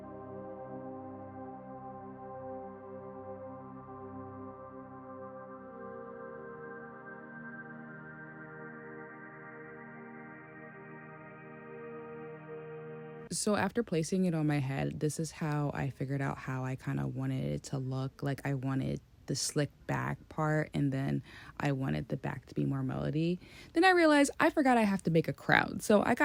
So after placing it on my head, this is how I figured out how I kind of wanted it to look. Like I wanted the slick back part and then I wanted the back to be more melody. Then I realized I forgot I have to make a crown. So I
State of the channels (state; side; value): identical; both; correlation 1.00